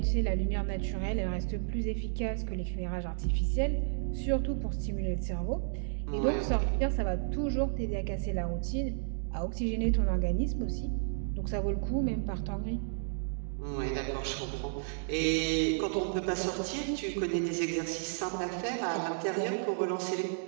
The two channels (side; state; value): left; silent; digital silence